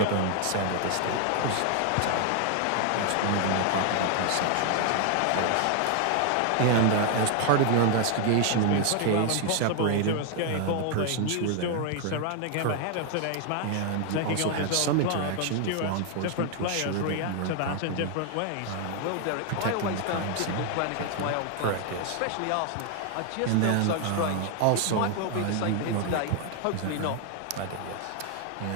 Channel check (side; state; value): both; different; correlation 0.00